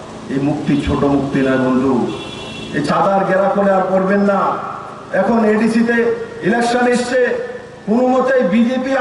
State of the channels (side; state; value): both; identical; correlation 1.00